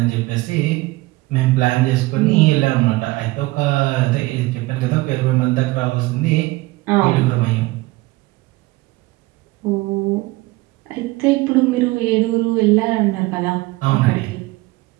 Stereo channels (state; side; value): quieter; left; 20.7 dB